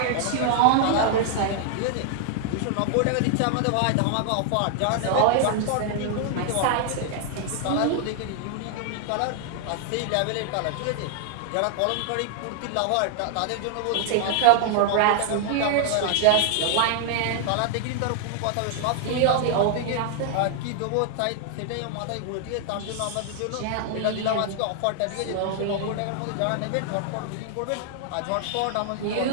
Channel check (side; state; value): both; different; correlation 0.00